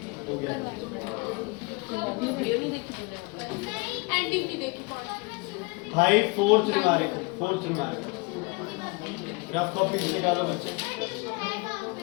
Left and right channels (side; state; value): right; quieter; 27.8 dB